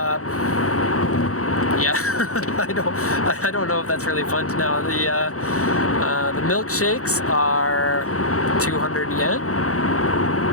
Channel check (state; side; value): late; right; 0.65 ms